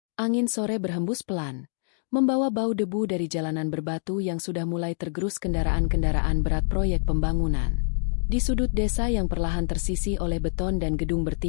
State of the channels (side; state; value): right; silent; digital silence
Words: Angin sore berhembus pelan, membawa bau debu dari jalanan berbatu yang sudah mulai tergerus kendaraan-kendaraan berat proyek pembangunan. Di sudut desa yang perlahan tersisi oleh beton dan gedung